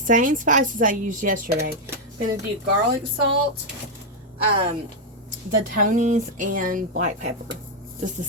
spices I used yesterday. I'm going to do garlic salt, the Tony's, and black pepper. Just the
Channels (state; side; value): normal; both; correlation 0.00